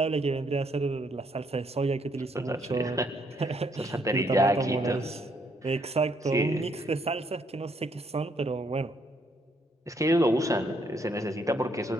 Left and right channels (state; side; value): normal; both; correlation 0.71